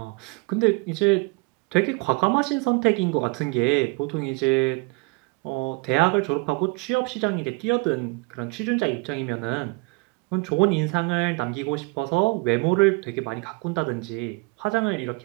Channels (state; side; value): quieter; left; 28.3 dB